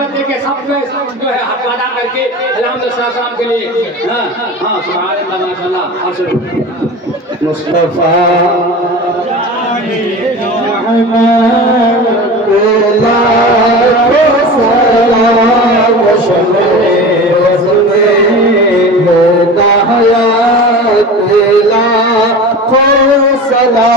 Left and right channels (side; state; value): both; normal; correlation 0.33